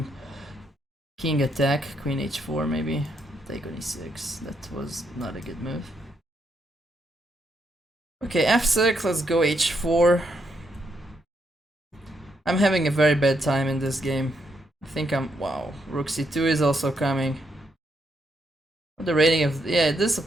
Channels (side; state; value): both; normal; correlation 0.78